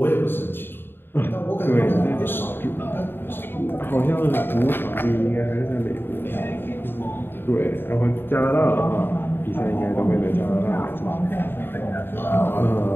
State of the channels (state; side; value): late; right; 0.10 ms